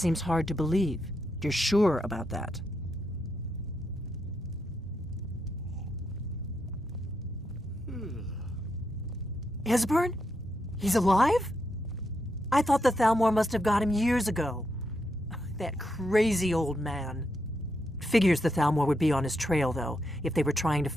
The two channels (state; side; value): normal; both; correlation 0.82